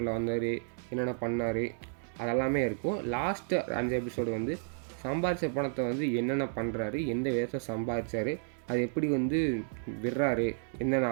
வந்தார், என்னென்ன பண்ணார் அதெல்லாமே இருக்கும். லாஸ்ட்டு 5 எபிசோடு வந்து சம்பாதிச்ச பணத்தை வந்து என்னென்ன பண்ணுறாரு, எந்த விதத்தில் சம்பாதிச்சார், அது எப்படி வந்து விடுறாரு, என்னென்ன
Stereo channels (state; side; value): silent; left; digital silence